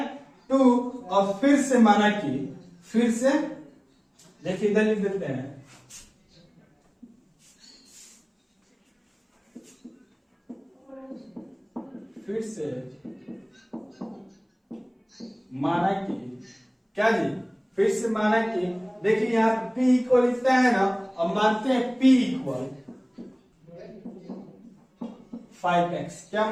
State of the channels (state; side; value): identical; both; correlation 1.00